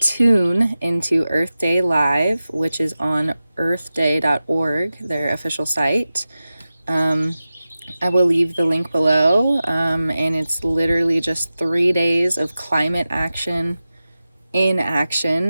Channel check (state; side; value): inverted; both; correlation -0.95